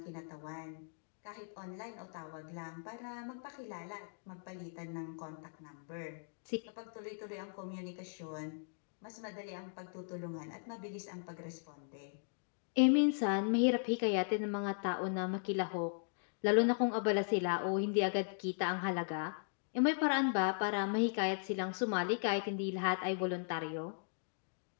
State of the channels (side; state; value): right; silent; digital silence